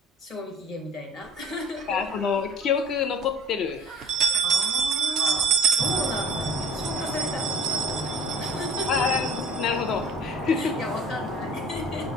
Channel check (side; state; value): both; normal; correlation 0.44